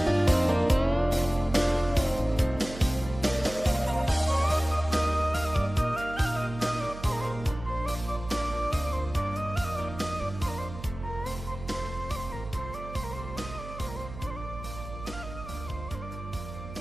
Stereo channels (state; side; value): noise; right; hum, 12 dB below the sound